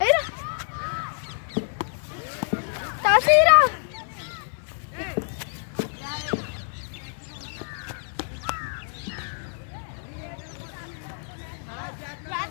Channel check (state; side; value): silent; right; 60 dB below the other